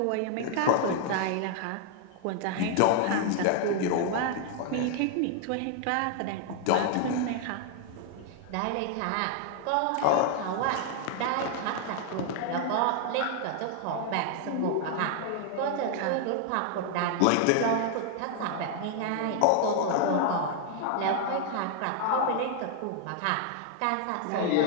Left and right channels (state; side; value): different; both; correlation 0.00